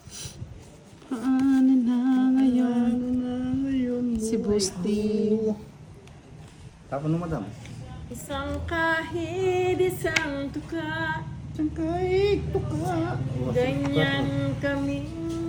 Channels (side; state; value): both; identical; correlation 1.00